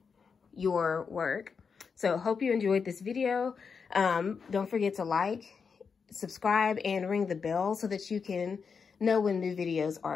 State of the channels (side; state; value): right; quieter; 5.8 dB